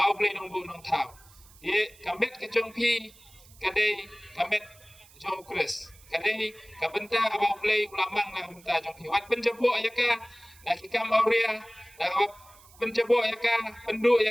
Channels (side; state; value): right; noise; hiss, 25 dB below the sound